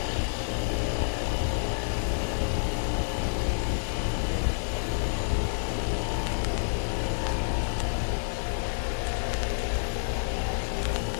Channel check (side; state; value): right; silent; digital silence